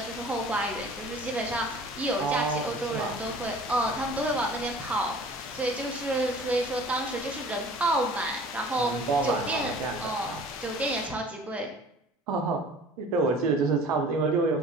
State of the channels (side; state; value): both; normal; correlation 0.47